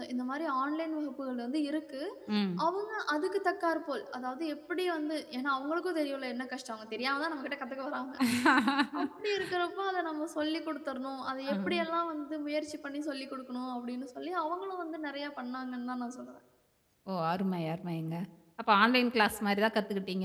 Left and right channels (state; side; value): identical; both; correlation 1.00